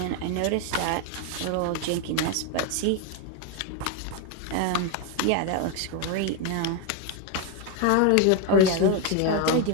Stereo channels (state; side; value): different; both; correlation 0.01